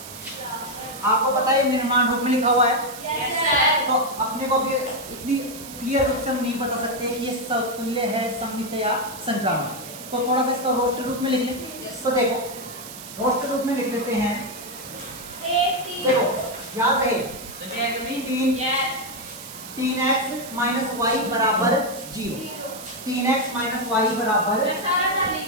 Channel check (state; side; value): noise; right; hiss, 13 dB below the sound